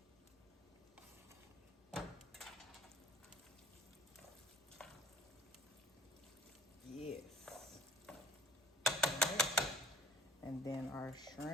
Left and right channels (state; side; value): normal; both; correlation 0.54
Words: Yes. All right. And then our